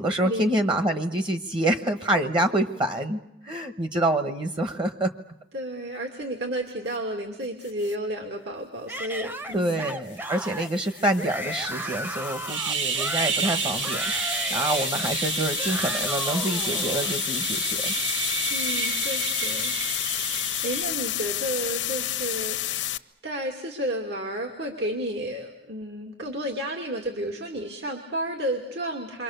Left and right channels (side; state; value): both; normal; correlation 0.32